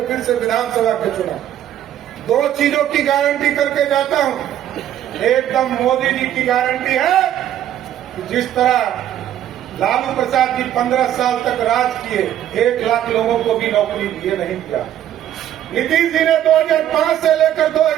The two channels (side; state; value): left; quieter; 11.4 dB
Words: फिर से विधानसभा के चुनाव। 2 चीजों की गारंटी करके जाता हूं। एकदम मोदी जी की गारंटी है कि जिस तरह लालू प्रसाद जी 15 साल तक राज किए, 1 लाख लोगों को भी नौकरी दिए नहीं किया। नीतीश जी ने 2005 से लेकर